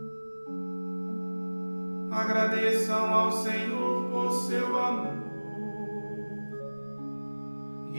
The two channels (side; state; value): both; inverted; correlation -1.00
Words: Agradeçam ao Senhor por seu amor